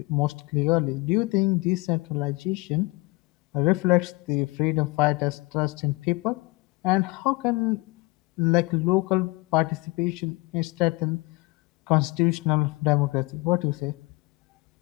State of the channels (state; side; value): quieter; right; 24.8 dB